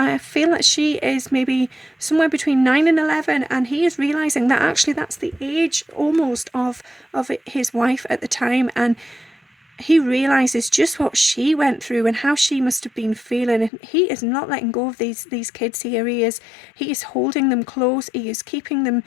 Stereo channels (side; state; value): right; drops out; at 13.7 s